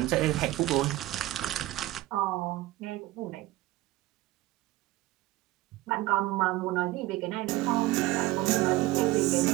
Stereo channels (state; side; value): quieter; left; 17.6 dB